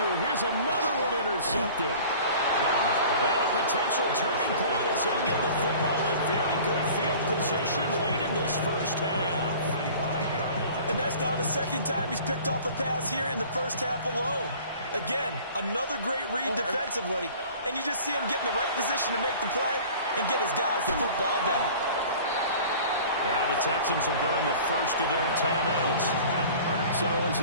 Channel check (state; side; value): inverted; both; correlation -0.45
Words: Here's another one intercepted. And a potential turning point as he'll get the football in very good field position late in this first half. And that's now the 2nd time he's picked off a pass here in the first half alone. Again, another great read defensively, and you just see him get in the right position to make the play and get his guys the football back. Now the Texans will burn the first of their timeouts. So as